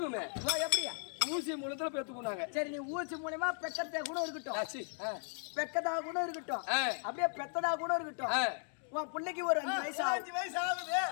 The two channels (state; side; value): silent; right; 53 dB below the other